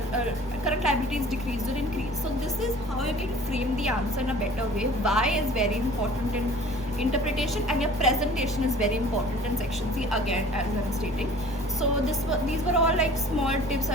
liabilities decreased or increased. So this is how you can frame the answer in a better way. Why is very important in interpretation, and your presentation is very important in section C, again, as I'm stating. So these were all like small tips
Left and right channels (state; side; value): normal; both; correlation 0.47